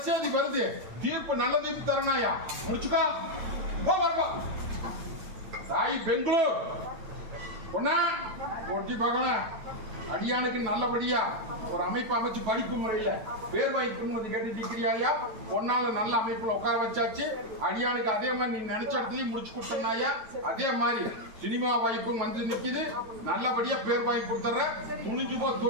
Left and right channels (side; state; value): left; late; 9.2 ms